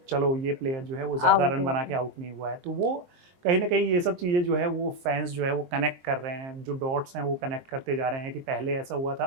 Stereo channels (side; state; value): left; late; 23 ms